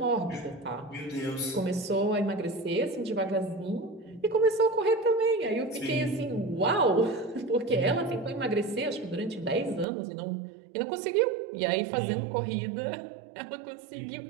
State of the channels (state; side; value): drops out; left; at 9.9 s